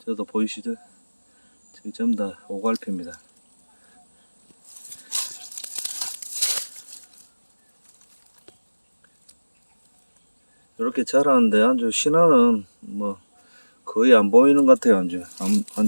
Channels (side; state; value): both; inverted; correlation -1.00